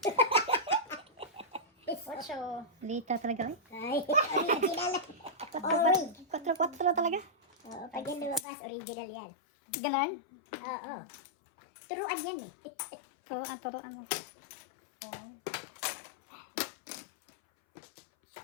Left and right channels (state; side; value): drops out; right; at 8.5 s